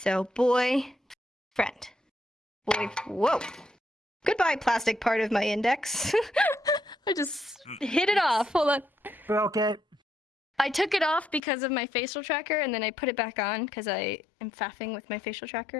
boy, friend. Boy, whoa. Goodbye, plastic part of my index. I just hit it off. Hold on. Broke it. I took it off because of my facial tracker, and then I put it back on because I am faffing with my facial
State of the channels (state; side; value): drops out; right; at 11.4 s